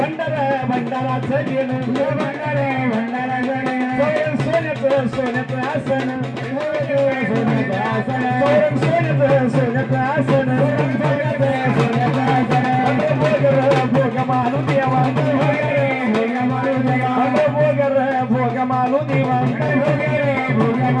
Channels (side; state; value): both; identical; correlation 1.00